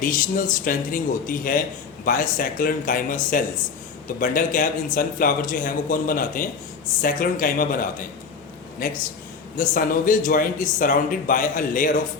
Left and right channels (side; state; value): right; quieter; 5.4 dB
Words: स्ट्रेंथनिंग होती है बाय सैक्रोनकाइमा सेल्स। तो बंडल कैप इन सनफ्लावर जो है वो कौन बनाते हैं, सैक्रोनकाइमा बनाते हैं। Next, the synovial joint is surrounded by a layer of